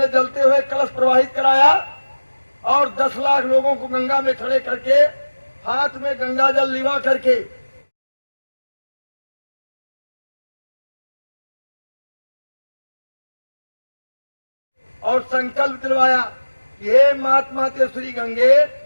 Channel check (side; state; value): both; inverted; correlation -1.00